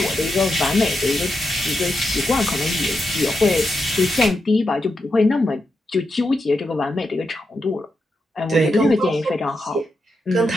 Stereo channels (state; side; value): normal; both; correlation 0.86